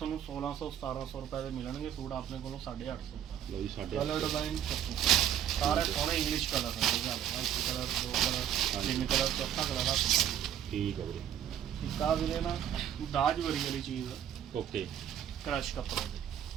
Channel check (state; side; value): quieter; left; 10.1 dB